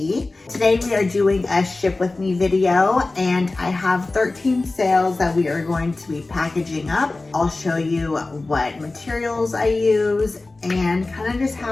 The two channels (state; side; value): quieter; right; 3.2 dB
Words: Today we are doing a ship with me video and I have 13 sales that we are going to be packaging up. I'll show you what materials I use and kind of just